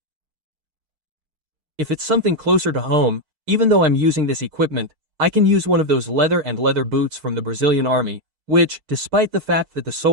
If it's something closer to home, even though I'm using this equipment, I can use one of those leather boots from the Brazilian army, which, despite the fact that the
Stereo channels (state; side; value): late; left; 6.5 ms